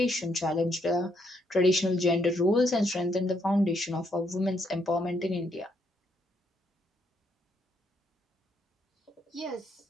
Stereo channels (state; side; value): normal; both; correlation 0.75